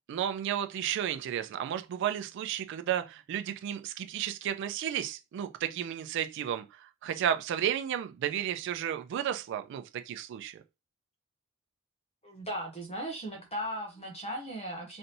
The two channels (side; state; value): left; quieter; 8.2 dB